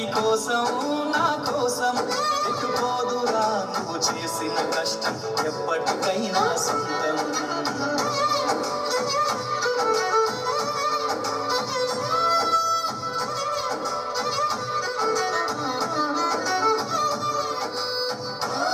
కోసం నా కోసం ఎటుపోదురా నువ్వు చేసిన కష్టం ఎప్పటికైనా సొంతం.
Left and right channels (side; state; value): both; identical; correlation 1.00